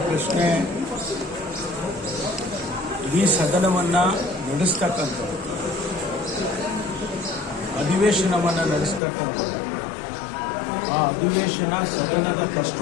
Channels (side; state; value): right; drops out; at 9.0 s